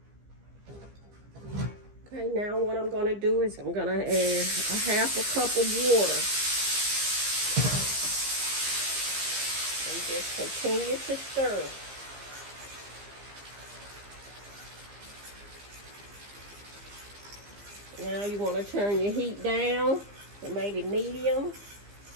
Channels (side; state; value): left; late; 15 ms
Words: Okay, now what I'm gonna do is I'm gonna add a half a cup of water. And just continue to stir. Now you want to turn your heat down to maybe medium,